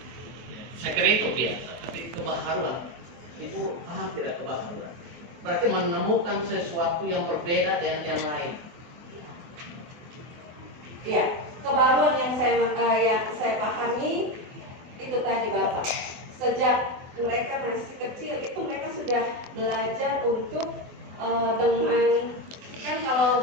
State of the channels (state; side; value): late; left; 23 ms